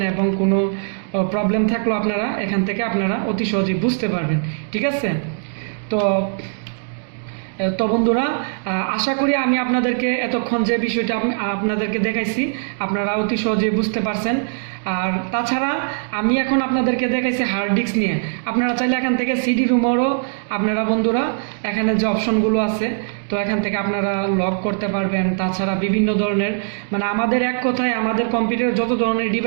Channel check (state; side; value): silent; left; digital silence